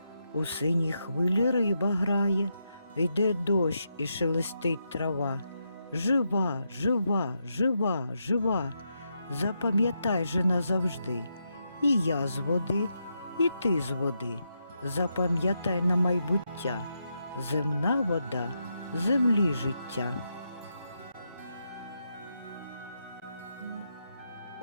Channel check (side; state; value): both; inverted; correlation -0.83